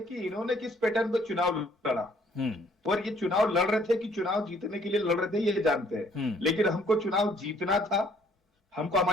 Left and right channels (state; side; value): normal; both; correlation 0.62